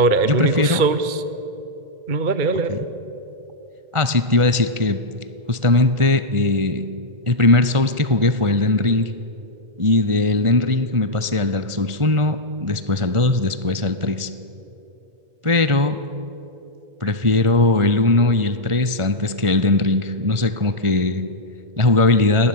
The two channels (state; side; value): late; left; 1.4 ms